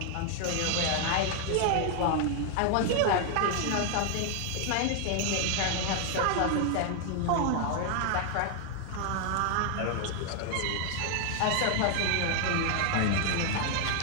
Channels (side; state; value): both; different; correlation 0.00